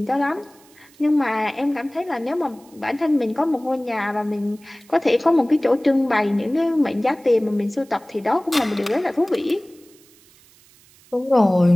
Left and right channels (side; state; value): right; noise; hiss, 28 dB below the sound